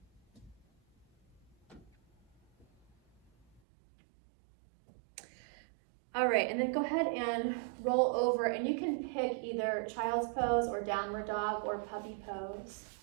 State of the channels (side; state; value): left; drops out; at 3.6 s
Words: All right, and then go ahead and roll over, and you can pick either child's pose or downward dog or puppy pose.